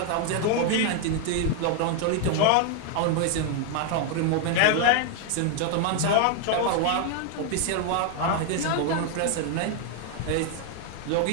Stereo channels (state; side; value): different; both; correlation 0.00